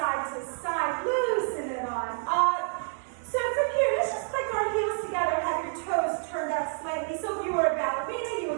to side, loosen it on up. So from here, let's just click our heels together, have your toes turned out slightly. So if you were a ballerina, you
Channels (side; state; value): left; silent; 59 dB below the other